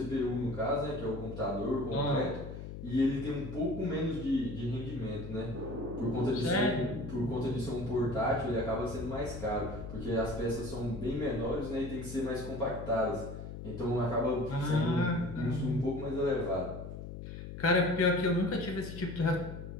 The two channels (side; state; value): left; noise; hum, 9 dB below the sound